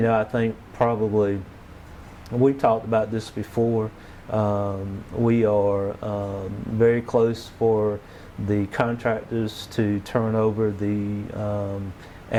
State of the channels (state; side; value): identical; both; correlation 1.00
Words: think probably we've talked about this before. We are very close for the contractors to turn over the